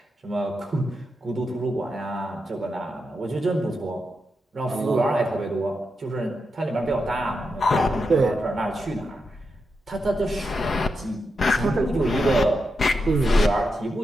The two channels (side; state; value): both; normal; correlation 0.86